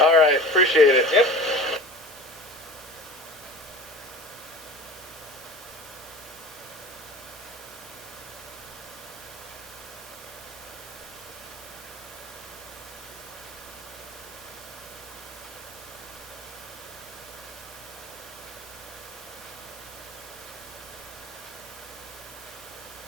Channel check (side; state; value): both; normal; correlation 0.37